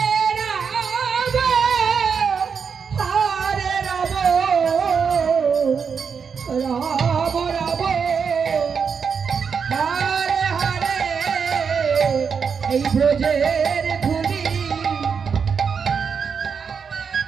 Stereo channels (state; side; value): quieter; left; 6.2 dB